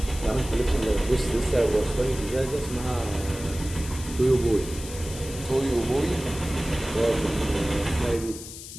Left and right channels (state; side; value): noise; left; hiss, 12 dB below the sound